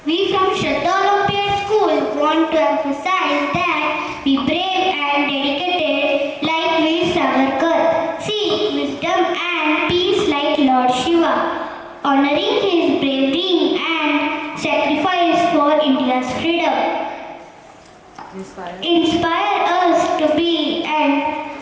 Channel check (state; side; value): identical; both; correlation 1.00